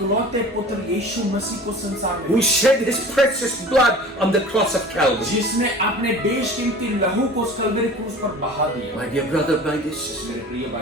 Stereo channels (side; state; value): both; normal; correlation 0.41